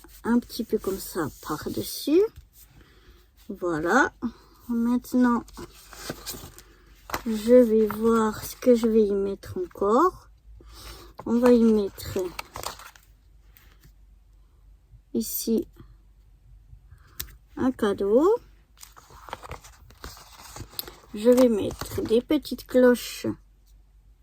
un petit peu comme ça par-dessus. Voilà. Maintenant, je vais voir ce que je vais y mettre encore. On va y mettre ici un cadeau. je vais mettre des petites cloches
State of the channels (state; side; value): identical; both; correlation 1.00